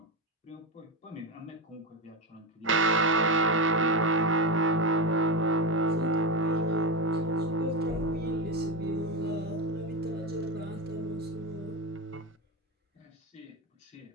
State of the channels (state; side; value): normal; both; correlation 0.13